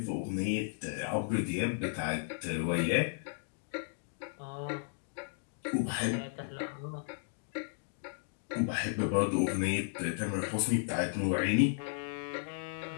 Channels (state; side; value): silent; right; digital silence